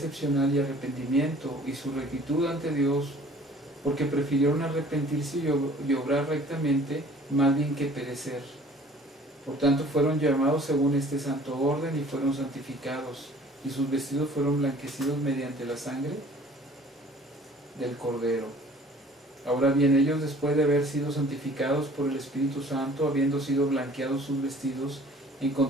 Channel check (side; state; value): both; normal; correlation 0.51